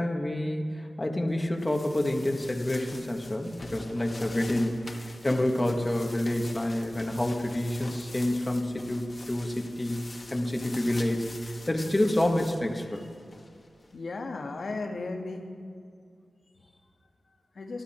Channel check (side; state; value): both; normal; correlation 0.98